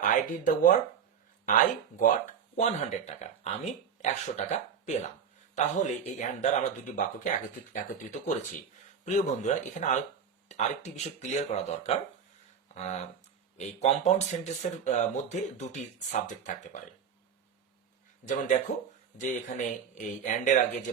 I did the work, I got 100 টাকা, আমি 100 টাকা পেলাম। তাহলে এই অ্যান্ড দ্বারা আমরা দুটি বাক্যকে একত্রিত করেছি। প্রিয় বন্ধুরা, এখানে আরেকটি বিষয় ক্লিয়ার করা দরকার। এই কম্পাউন্ড সেন্টেন্সের মধ্যে দুটি সাবজেক্ট থাকতে পারে। যেমন দেখো যে এখানে এই অ্যান্ড এর আগে যে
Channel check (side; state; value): left; quieter; 7.3 dB